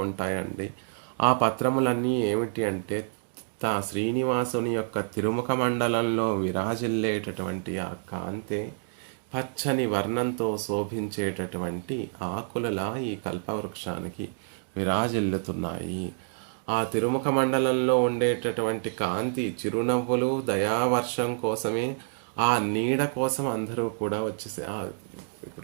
ఉంటాయండి. ఆ పత్రములన్నీ ఏమిటి అంటే శ్రీనివాసుని యొక్క తిరుముఖ మండలంలో విరాజిల్లేటటువంటి ఆ కాంతే పచ్చని వర్ణంతో శోభించేటటువంటి ఆకులలా ఈ కల్పవృక్షానికి విరాజిల్లుతున్నాయి. ఆ తిరుముఖ మండలంలో ఉండేటటువంటి కాంతి, చిరునవ్వులు, దయావర్షం కోసమే, ఆ నీడ కోసం అందరూ కూడా వచ్చేసి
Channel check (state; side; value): silent; left; digital silence